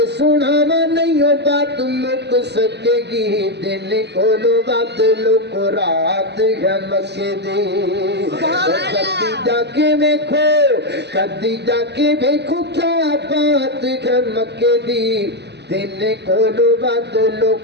سناواں نہیں ہو بات مک سکے گی دن کولو بدلو کو رات ہے مکے دی. کدی جا کے ویکھو کدی جا کے ویکھو کیا بات ہے مکے دی دن کولو بدلو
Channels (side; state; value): left; late; 0.50 ms